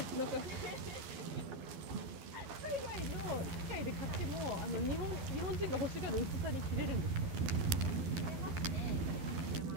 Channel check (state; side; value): late; left; 11 ms